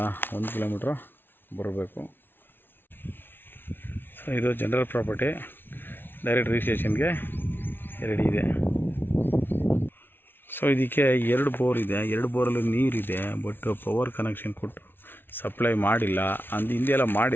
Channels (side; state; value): right; late; 0.10 ms